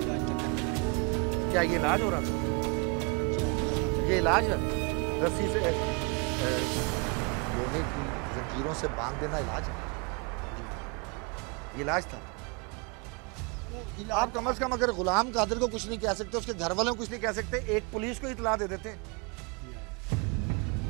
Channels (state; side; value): quieter; left; 31.7 dB